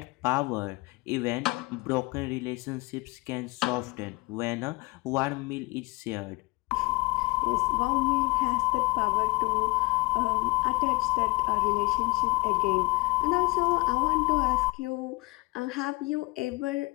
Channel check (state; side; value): quieter; right; 24.3 dB